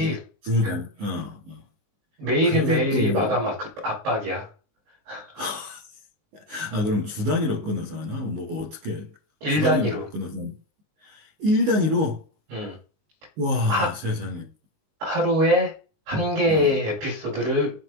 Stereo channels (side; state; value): left; late; 19 ms